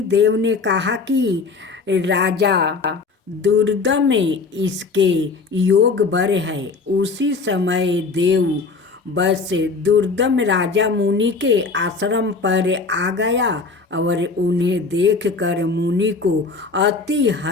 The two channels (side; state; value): right; quieter; 4.3 dB